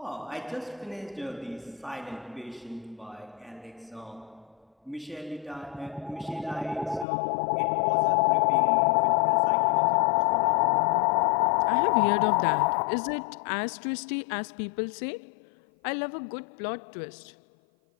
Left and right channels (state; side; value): drops out; right; at 7.1 s